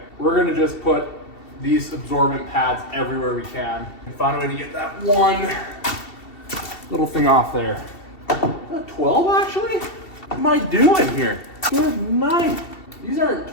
we're gonna just put these absorbent pads everywhere we can and find a way to get that one little thing off there. Is that 12 actually? What am I doing here? Good night. These aren't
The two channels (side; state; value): right; late; 2.7 ms